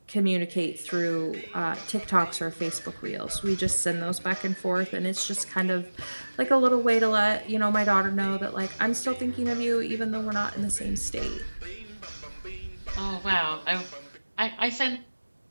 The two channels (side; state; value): both; inverted; correlation -1.00